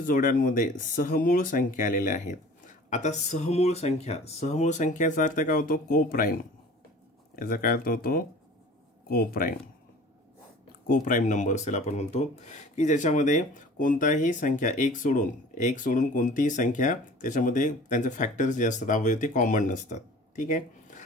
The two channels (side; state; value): both; normal; correlation 0.45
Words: सहमूळ संख्या आलेल्या आहेत? आता सहमूळ संख्याचा अर्थ काय होतो? कोप्राईम. याचा काय अर्थ होतो? कोप्राईम नंबर असेल आपण म्हणतो, की ज्याच्यामध्ये कोणताही संख्या एक सोडून कोणतीही संख्या त्याच्यामध्ये त्यांचे फॅक्टर्स जे असतात अवयव ते कॉमन नसतात. ठीक आहे.